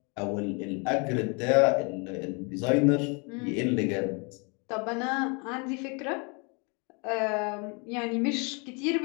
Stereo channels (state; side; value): quieter; right; 33.2 dB